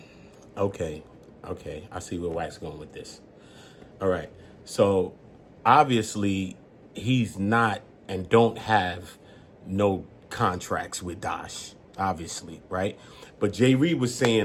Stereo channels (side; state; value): both; identical; correlation 1.00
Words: okay, I see where Wack's going with this. All right, so obviously he's not and don't have no contracts with Dosh, obviously, right? But Jay Reed was